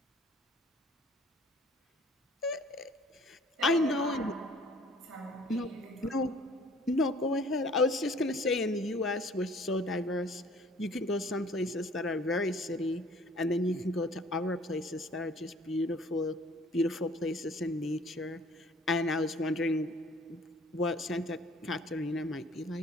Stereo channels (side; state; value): both; normal; correlation 0.54